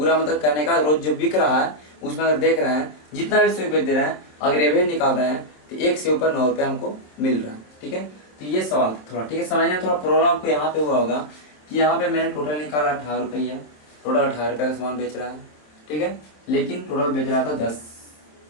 मतलब कहने का रोज जो बिक रहा है उसमें अगर देख रहे हैं जितना भी सेव बेच दे रहे हैं, अगर एवरेज निकाल रहे हैं तो एक सेव पर 9 रुपया हमको मिल रहा है। ठीक है, तो ये सवाल थोड़ा, ठीक है, समझने में थोड़ा प्रॉब्लम आपको यहाँ पे हुआ होगा कि यहाँ पे मैंने टोटल निकाला 18 रुपया, टोटल 18 रुपया का सामान बेच रहा है। ठीक है, लेकिन टोटल बेच रहा था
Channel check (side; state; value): right; late; 27 ms